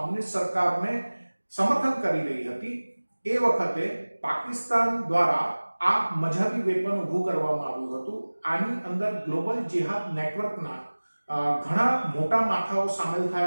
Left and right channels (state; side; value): inverted; both; correlation -1.00